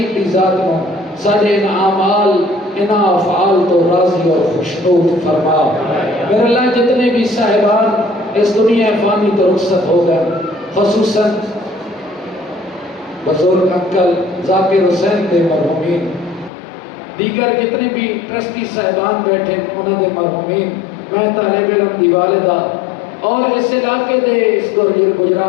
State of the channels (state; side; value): drops out; right; at 16.5 s